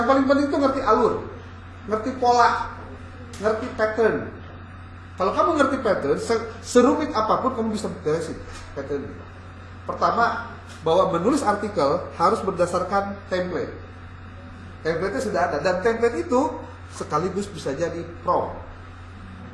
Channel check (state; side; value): identical; both; correlation 1.00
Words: paling penting itu ngerti alur. Ngerti pola. Ngerti pattern. Kalau kamu ngerti pattern, serumit apapun kamu bisa beresin pattern. Pertama, bahwa menulis artikel harus berdasarkan template. Template-nya sudah ada dan template itu sekaligus bisa jadi prompt.